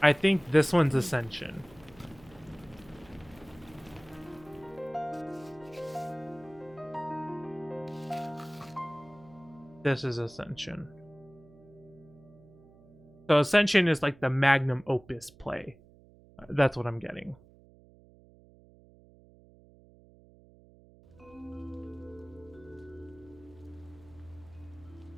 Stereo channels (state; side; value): noise; right; hum, 24 dB below the sound